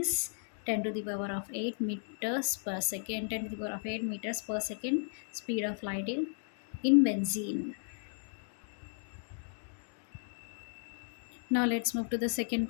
10 to the power of 8 meters per second. 10 to the power of 8 meters per second speed of light in benzene. Now let's move to the second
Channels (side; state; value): right; silent; digital silence